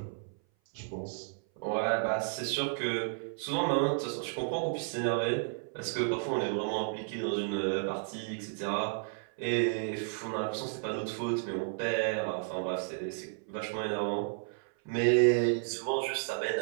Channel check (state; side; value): silent; left; 56 dB below the other